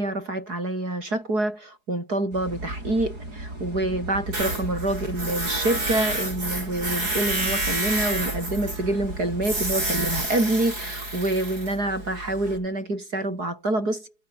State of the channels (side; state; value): left; late; 4.8 ms